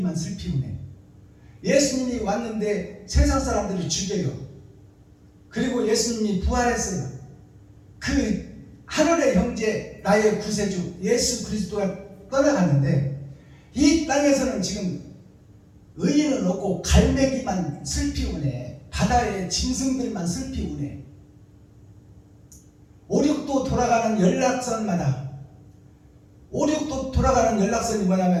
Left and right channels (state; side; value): identical; both; correlation 1.00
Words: 슬피우네. 예수님이 왔는데 세상 사람들이 죽여요. 그리고 예수님이 부활했어요. 그 하늘의 형제 나의 구세주 예수 그리스도가 떠나갔는데 이 땅에서는 지금 의인은 없고 갈매기만 슬피우네. 바다의 짐승들만 슬피우네. 5, 6도 돌아가는 연락선마다 5, 6도 돌아가는 연락선이